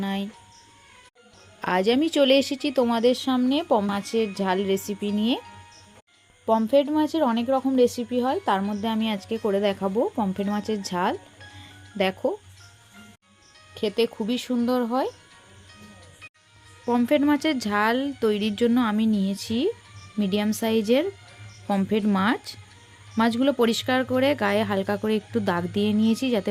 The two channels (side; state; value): both; identical; correlation 1.00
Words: আজ আমি চলে এসেছি তোমাদের সামনে মাছের ঝাল রেসিপি নিয়ে। পমফ্রেট মাছের অনেক রকম রেসিপি হয়, তার মধ্যে আমি আজকে করে দেখাবো পমফ্রেট মাছের ঝাল। দেখো, খেতে খুবই সুন্দর হয়। পমফ্রেট মাছের ঝাল তৈরির জন্য আমি নিয়েছি মিডিয়াম সাইজের পমফ্রেট মাছ। মাছগুলো পরিষ্কার করে গায়ে হালকা করে একটু দাগ দিয়ে নিয়েছি যাতে